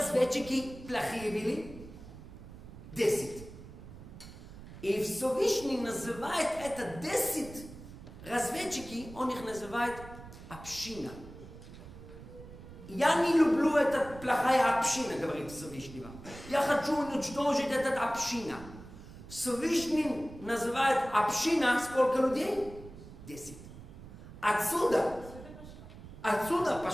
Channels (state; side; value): noise; right; rumble, 15 dB below the sound